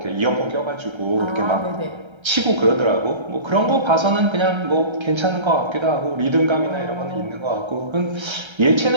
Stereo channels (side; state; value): left; late; 1.3 ms